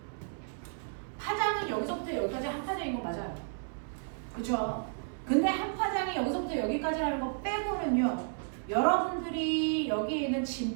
파장은 여기서부터 여기까지 한 파장인 거 맞아요. 그죠? 근데 한 파장이 여기서부터 여기까지라는 거 빼고는요 여러분들이 여기에 있는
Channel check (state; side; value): silent; left; 56 dB below the other